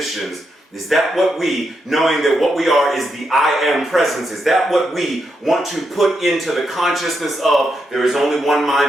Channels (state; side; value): normal; both; correlation 0.83